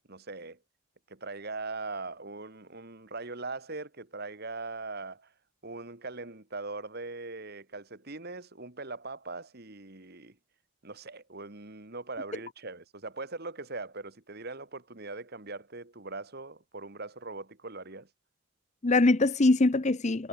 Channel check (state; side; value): normal; both; correlation 0.44